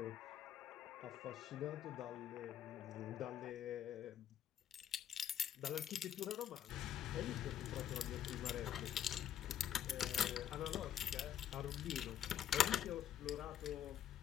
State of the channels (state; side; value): quieter; right; 10.1 dB